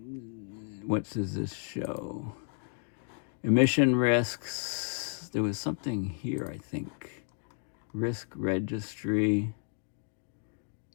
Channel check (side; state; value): right; silent; 56 dB below the other